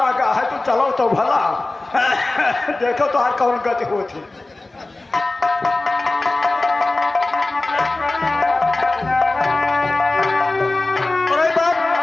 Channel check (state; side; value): quieter; right; 3.0 dB